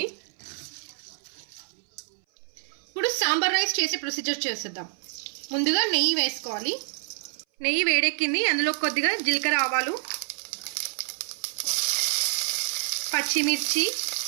ఇప్పుడు సాంబార్ రైస్ చేసే ప్రొసీజర్ చేసేద్దాం. ముందుగా నెయ్యి వేసుకోవాలి. నెయ్యి వేడెక్కింది, అందులో కొద్దిగా జీలకర్ర ఆవాలు, పచ్చిమిర్చి,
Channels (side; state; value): left; silent; 58 dB below the other